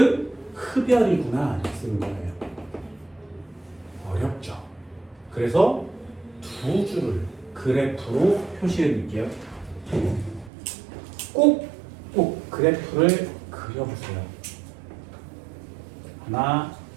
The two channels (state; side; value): drops out; left; at 10.5 s